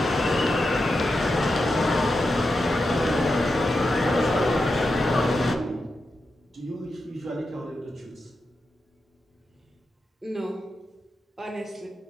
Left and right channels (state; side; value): normal; both; correlation 0.88